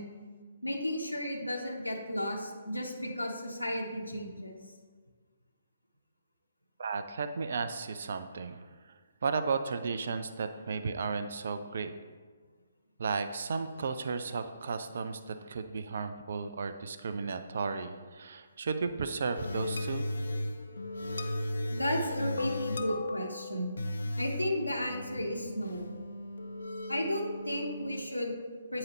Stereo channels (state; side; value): inverted; both; correlation -0.82